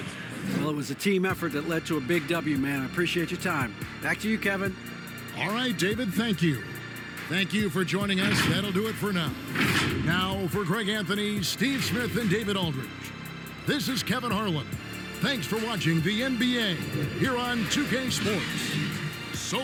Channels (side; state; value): both; identical; correlation 1.00